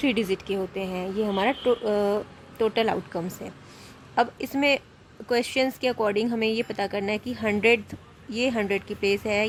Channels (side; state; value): both; identical; correlation 1.00